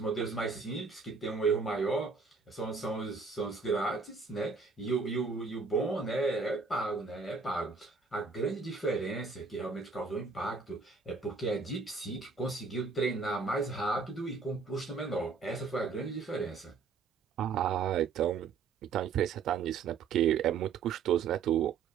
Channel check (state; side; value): quieter; left; 5.0 dB